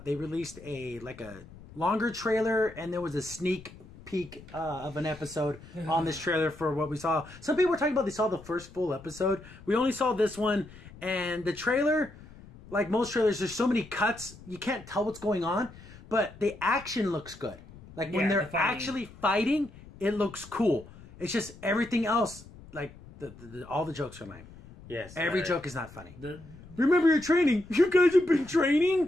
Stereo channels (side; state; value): left; noise; rumble, 19 dB below the sound